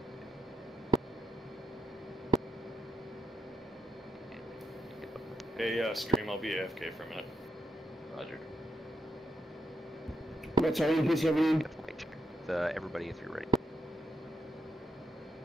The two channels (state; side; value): normal; both; correlation 0.84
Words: Hey, stream, I'll be AFK for a minute. Roger. What's our increase everything? everybody if you're ready.